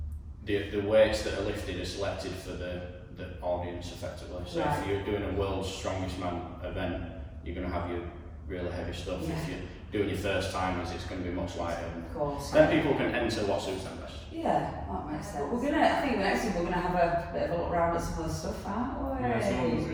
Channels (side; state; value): both; identical; correlation 1.00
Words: the weights that are lifted are selected for the audience effectively. So if you're doing a World's Strongest Man event, you're going to have your really heavy stuff. If you're doing your first timers, it's going to be much lighter. Of course. Then people can enter what suits them best. Yeah, that makes sense. I think the next thing we're gonna have a bit of a look around at some of the stuff, aren't we? Yeah, someone's